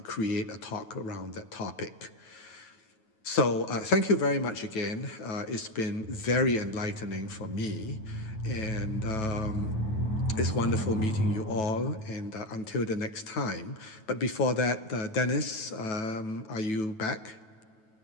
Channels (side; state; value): right; late; 9.3 ms